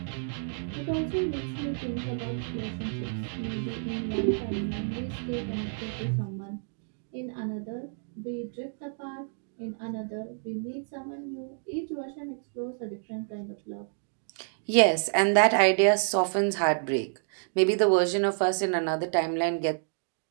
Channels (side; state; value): left; silent; digital silence